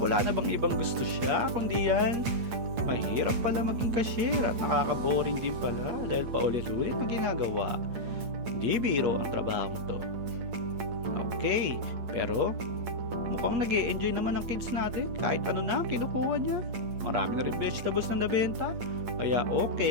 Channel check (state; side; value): late; left; 8.8 ms